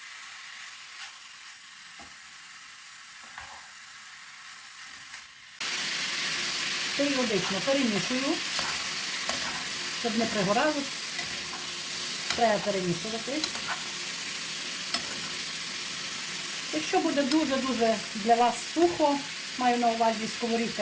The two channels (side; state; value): both; identical; correlation 1.00